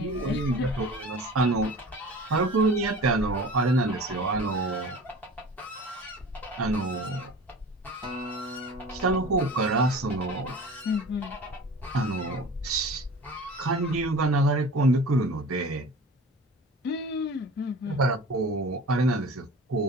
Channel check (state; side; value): normal; both; correlation 0.40